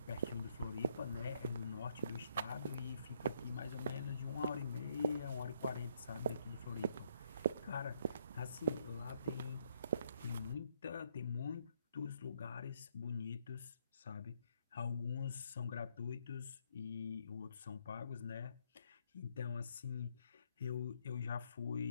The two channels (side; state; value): both; inverted; correlation -0.71